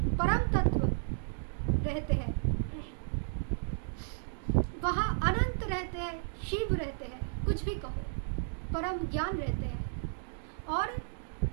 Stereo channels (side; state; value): left; silent; digital silence